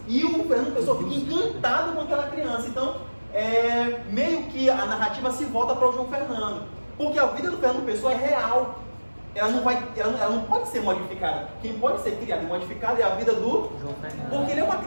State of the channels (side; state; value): both; inverted; correlation -1.00